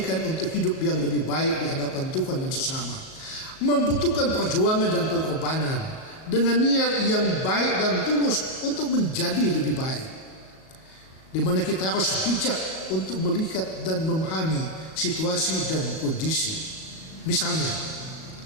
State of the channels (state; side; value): late; right; 37 ms